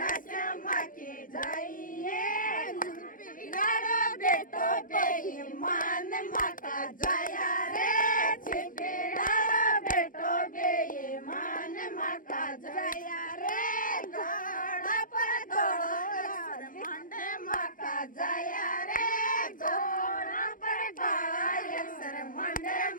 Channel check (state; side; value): late; right; 0.39 ms